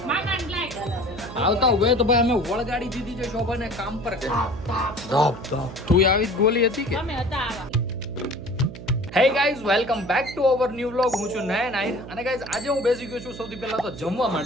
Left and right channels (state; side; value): noise; right; hum, 13 dB below the sound